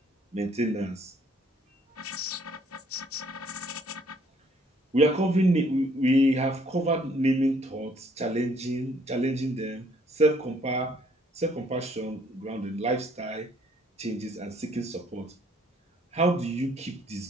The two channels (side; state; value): both; normal; correlation 0.64